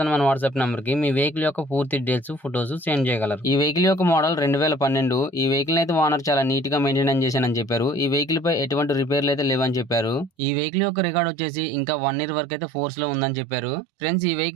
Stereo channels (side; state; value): left; drops out; at 10.3 s